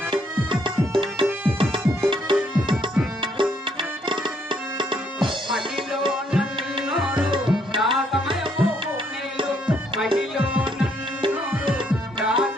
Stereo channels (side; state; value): both; normal; correlation 0.70